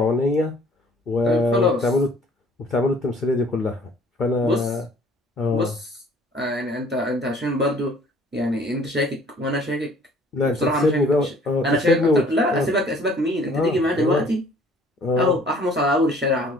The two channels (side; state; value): both; normal; correlation 0.55